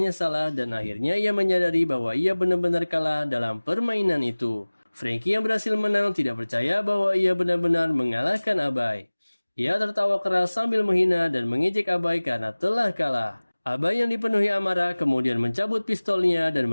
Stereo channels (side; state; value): both; inverted; correlation -1.00